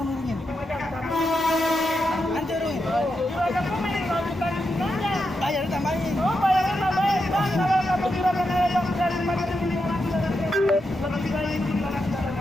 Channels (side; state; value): both; normal; correlation 0.86